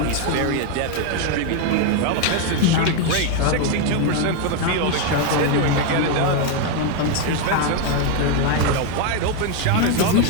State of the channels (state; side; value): different; both; correlation 0.01